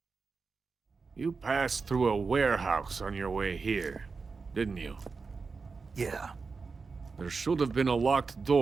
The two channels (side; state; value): left; quieter; 4.6 dB